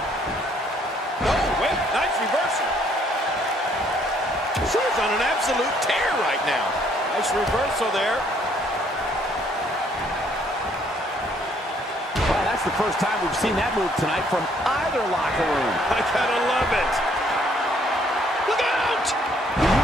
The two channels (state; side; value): normal; both; correlation 0.65